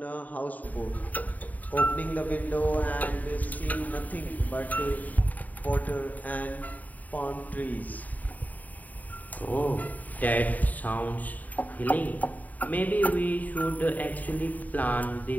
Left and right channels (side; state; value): right; late; 0.077 ms